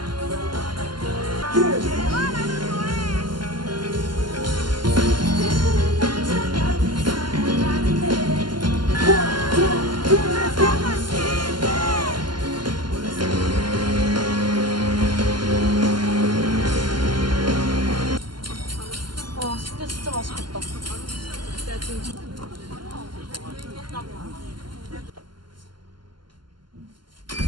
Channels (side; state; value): left; late; 0.71 ms